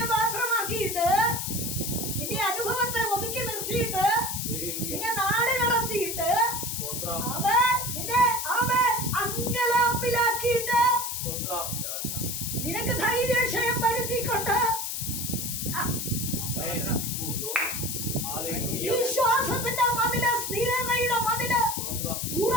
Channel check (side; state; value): left; noise; hiss, 3 dB below the sound